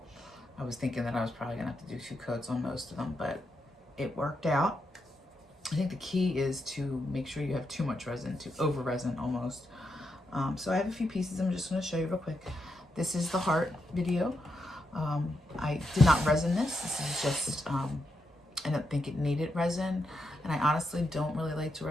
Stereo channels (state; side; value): normal; both; correlation 0.83